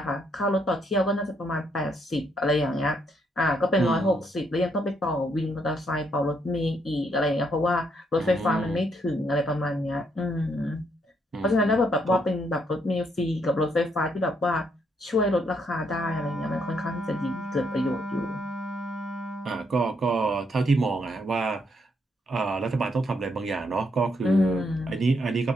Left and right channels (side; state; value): both; normal; correlation 0.74